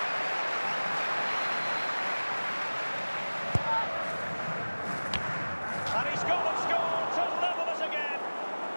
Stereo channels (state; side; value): inverted; both; correlation -1.00